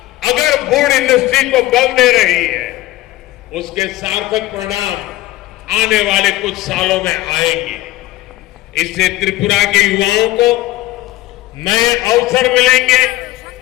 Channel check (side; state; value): right; quieter; 17.1 dB